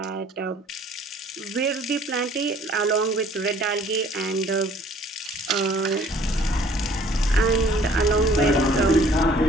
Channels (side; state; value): both; normal; correlation 0.55